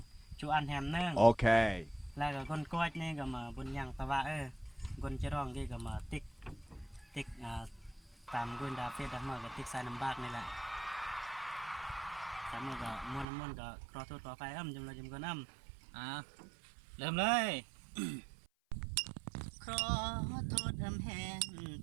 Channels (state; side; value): drops out; left; at 13.2 s